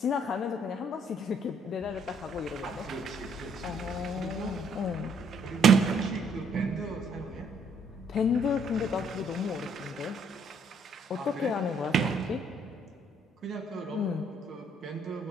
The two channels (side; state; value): both; normal; correlation 0.66